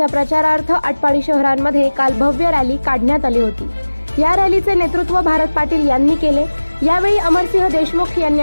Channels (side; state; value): both; inverted; correlation -1.00